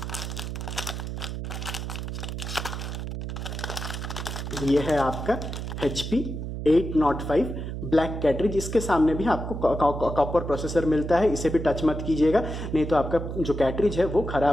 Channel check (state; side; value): noise; right; hum, 5 dB below the sound